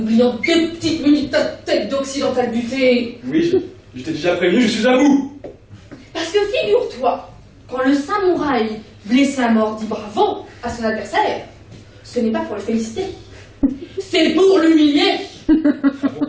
2 petites minutes ta tête d'occidental buté. Oui, je t'ai déjà prévenu, je suis à bout. Parce que figure-toi, quand le samouraï blessé à mort dit bravo à son adversaire, ce n'est pas pour le féliciter, c'est pour l'humilier.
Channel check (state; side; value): identical; both; correlation 1.00